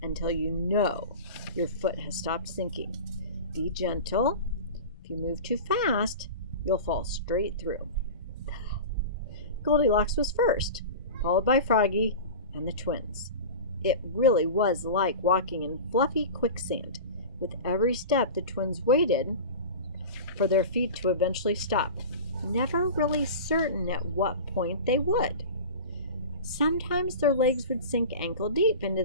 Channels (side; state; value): both; inverted; correlation -0.31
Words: until you know your foot has stopped sinking. Be gentle. If you move too fast, you'll fall straight through. Goldilocks was first, followed by Froggy and the twins. It really was like walking in fluffy quicksand. With every step, the twins waited for their feet to eventually stop, never really certain at what point they would. Sometimes their legs would sink ankle deep into